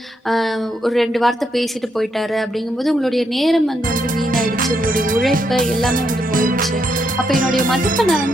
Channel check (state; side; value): normal; both; correlation 0.79